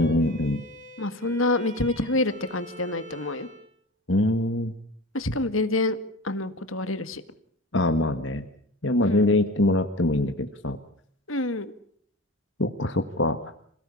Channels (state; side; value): normal; both; correlation 0.33